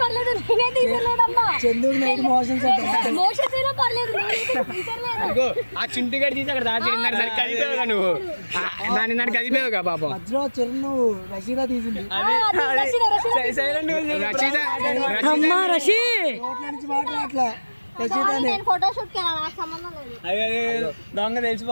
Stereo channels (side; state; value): both; inverted; correlation -1.00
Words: పర్లేదు, నేనే తీసలేదమ్మా. చందుకు నైట్ మోషన్స్ అంటే మోషన్స్ అయినా పర్లేదు, నేనైతే తీసలేదు. ఇదిగో ఆ చింటి గడి తీసి అక్కడ దాచి సరికి కదిపోయావుగా నువ్వు దాని దాన్ని కదిపోయావుగా పాపం. మధ్యలో చిరును రషీదా తీసింది. రచయిత అమ్మా రషి నోట్ల నుంచి మాట అట్లా రషీదానే. నేను ఫోటోషూట్ కి వెళ్ళాను, నాకు సంబంధం లేదు. దొంగ